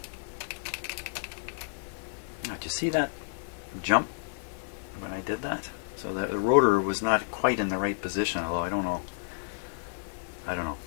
Now, did you see that jump when I did that? So the rotor was not quite in the right position, although I don't know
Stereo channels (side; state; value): right; silent; 57 dB below the other